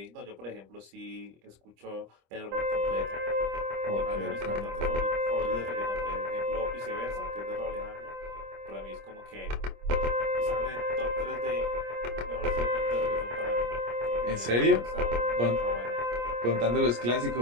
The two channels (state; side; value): late; left; 25 ms